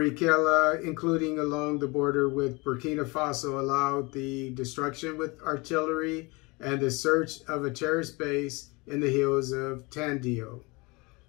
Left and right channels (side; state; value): right; quieter; 26.1 dB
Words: including along the border with Burkina Faso, allowed the destruction with artillery and the search of a terrorist base in the hills of Tandio.